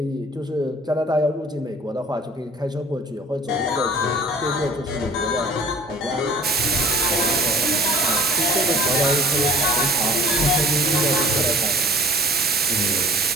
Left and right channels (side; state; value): both; normal; correlation 0.49